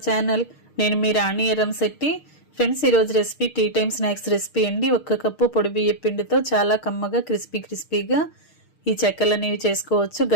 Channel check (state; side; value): late; right; 6.5 ms